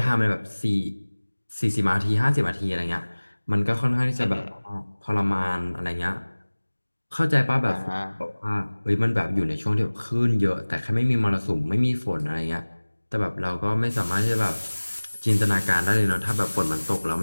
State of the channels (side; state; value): both; inverted; correlation -1.00